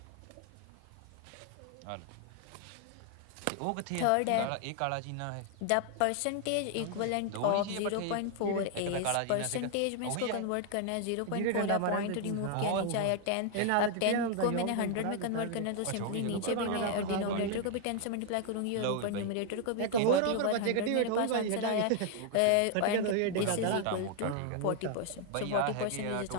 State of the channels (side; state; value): both; different; correlation 0.00